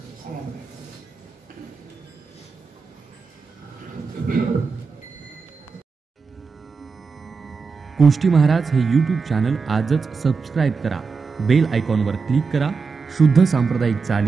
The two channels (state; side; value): quieter; left; 4.9 dB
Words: गोष्टी महाराज हे यूट्यूब चॅनल आजच सबस्क्राईब करा. बेल आयकॉनवर क्लिक करा. शुद्ध सांप्रदायिक